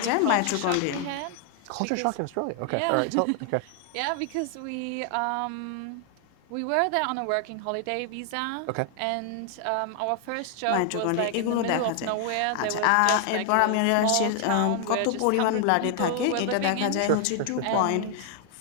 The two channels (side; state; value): both; different; correlation 0.00